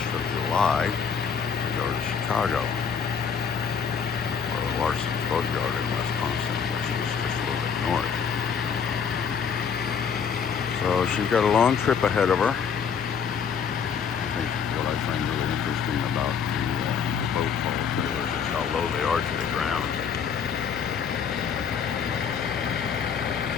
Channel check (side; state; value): right; quieter; 6.7 dB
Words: of July to go to Chicago, or Larson's Boatyard in Wisconsin, which is just a little bit north. So she's got a long trip ahead of her. I think what I find really interesting about the boat haul trailers is how low they are to the ground.